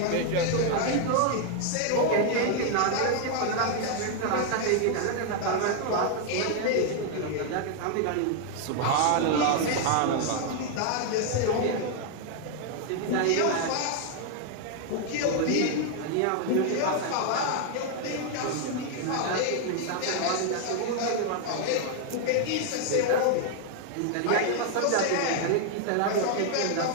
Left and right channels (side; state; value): both; different; correlation 0.00